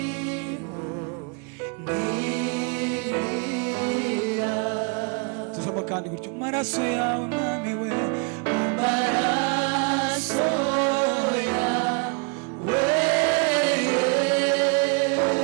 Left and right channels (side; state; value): left; quieter; 33.2 dB